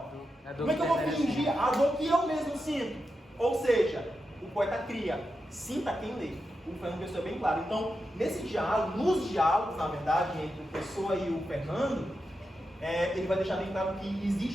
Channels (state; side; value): normal; both; correlation 0.88